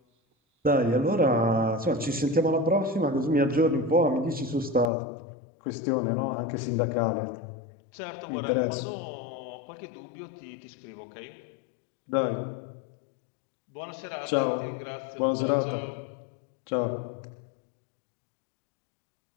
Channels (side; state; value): right; drops out; at 4.9 s